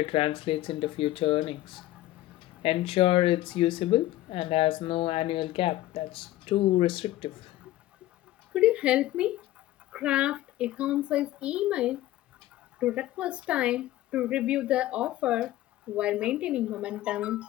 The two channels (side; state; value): right; quieter; 15.3 dB